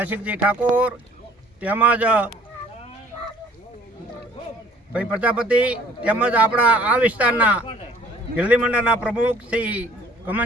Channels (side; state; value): both; normal; correlation 0.57